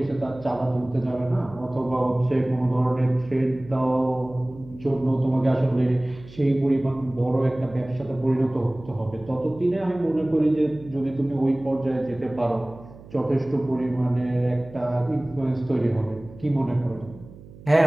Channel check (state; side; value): noise; right; hum, 19 dB below the sound